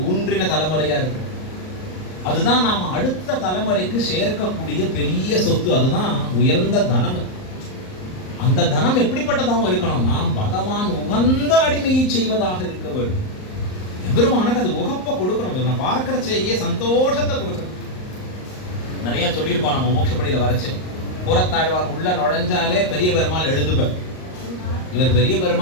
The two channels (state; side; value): late; right; 38 ms